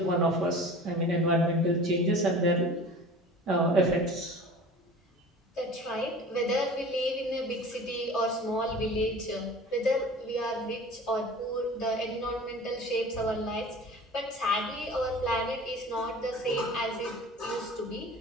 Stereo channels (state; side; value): normal; both; correlation 0.41